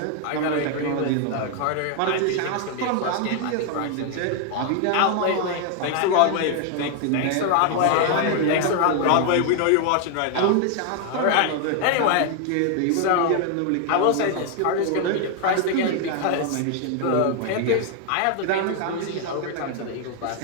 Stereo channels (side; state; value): both; different; correlation 0.00